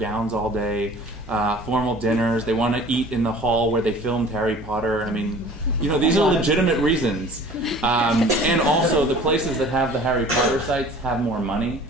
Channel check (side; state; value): both; normal; correlation 0.46